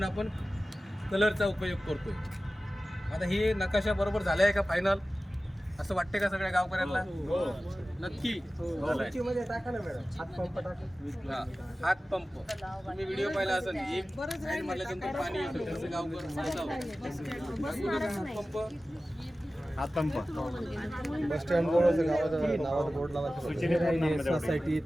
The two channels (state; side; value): normal; both; correlation 0.96